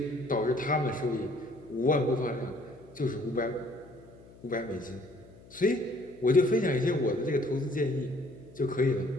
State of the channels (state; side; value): noise; left; hum, 22 dB below the sound